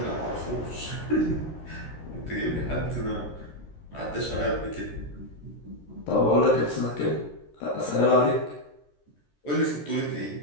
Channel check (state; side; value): late; right; 13 ms